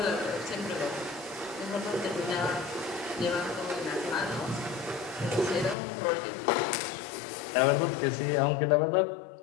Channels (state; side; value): drops out; right; at 5.8 s